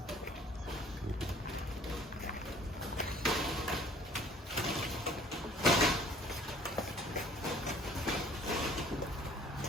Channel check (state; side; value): normal; both; correlation 0.53